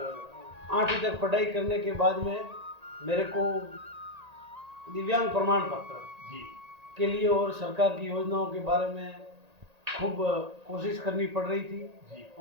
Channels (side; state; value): left; late; 1.8 ms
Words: 8वीं तक पढ़ाई करने के बाद में मेरे को दिव्यांग प्रमाण पत्र जी के लिए और सरकार की योजनाओं के बारे में खूब कोशिश करनी पड़ रही थी। जी